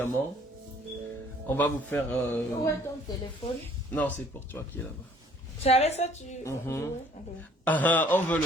on va vous faire... Où est ton téléphone? Non, c'est pour toi qui est là-bas. C'est avec ça tu... Ah, on veut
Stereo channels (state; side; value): normal; both; correlation 0.57